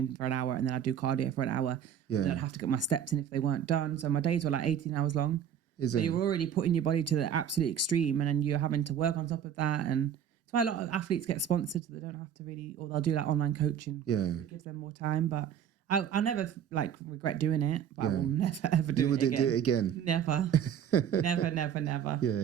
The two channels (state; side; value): quieter; left; 8.8 dB